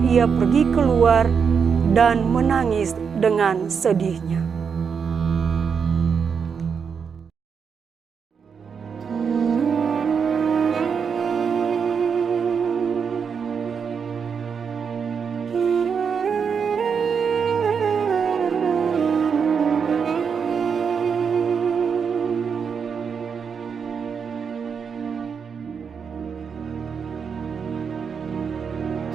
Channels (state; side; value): quieter; left; 6.4 dB